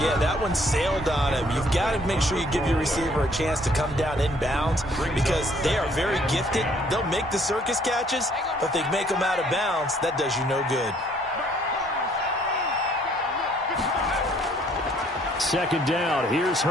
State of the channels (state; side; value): normal; both; correlation 0.62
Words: that one sailed on him. You've got to make sure you give your receiver a chance to come down inbounds because they are very gifted. They'll make the circus catches, but if they make them out of bounds, that does you no good. 2nd down, here's